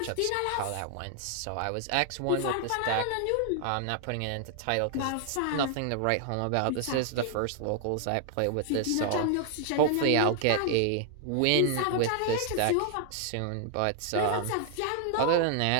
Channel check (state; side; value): different; both; correlation 0.00